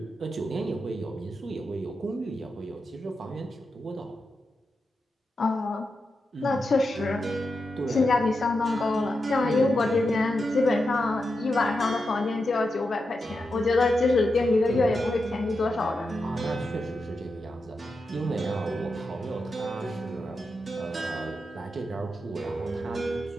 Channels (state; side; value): normal; both; correlation 0.88